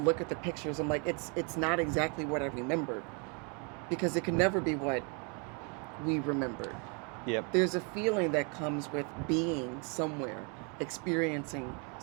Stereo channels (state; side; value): quieter; left; 35.0 dB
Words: look at the pictures, I'm like, it's not exactly what I remembered, because it can never be what we remembered. Yep. There's a feeling that comes with being somewhere, experiencing